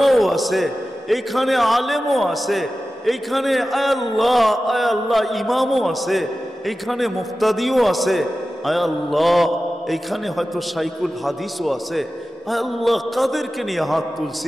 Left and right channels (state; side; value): normal; both; correlation 0.94